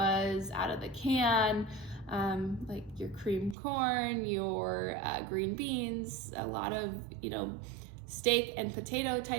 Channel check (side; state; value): left; drops out; at 3.6 s